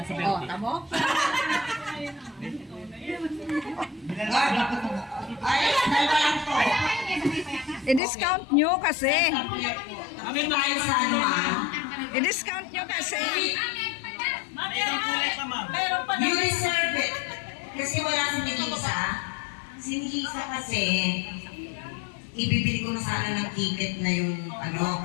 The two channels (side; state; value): right; drops out; at 8.0 s